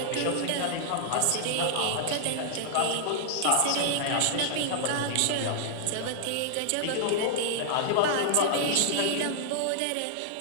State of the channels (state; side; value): different; both; correlation -0.01